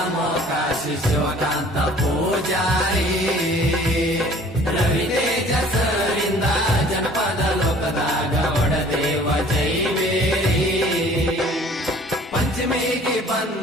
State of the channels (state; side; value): normal; both; correlation 0.52